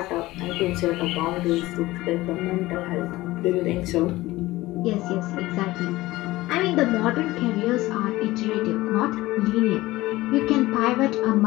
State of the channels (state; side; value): quieter; right; 18.4 dB